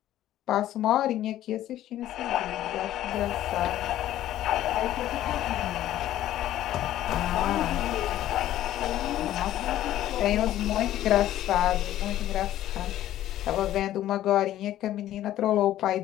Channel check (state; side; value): quieter; right; 13.1 dB